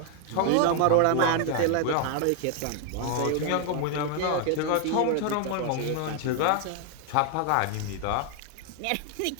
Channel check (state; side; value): different; both; correlation 0.00